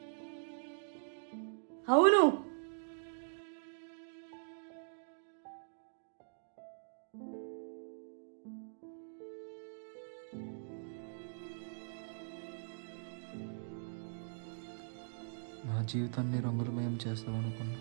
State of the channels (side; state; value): left; silent; digital silence